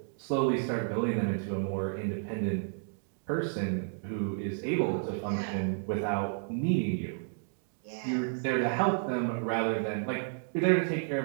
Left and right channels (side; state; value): left; silent; digital silence